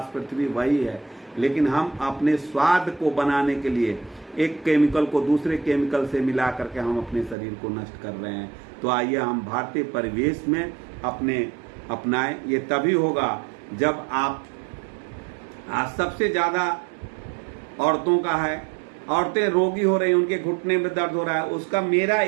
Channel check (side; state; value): left; drops out; at 7.4 s